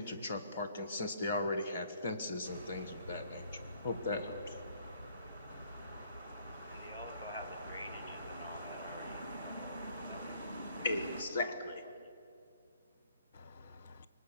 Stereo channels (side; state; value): both; inverted; correlation -0.63